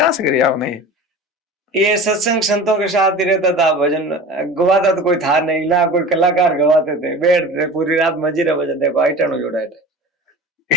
से करी आपने? ये सत्संग संतों के साथ ही रहता था, भजन गवाता तो कोई था नहीं ना, कोई कलाकार गवाते थे, बैठते पूरी रात मजीरा बजाते, आइटनो जोड़ा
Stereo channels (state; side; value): normal; both; correlation 0.36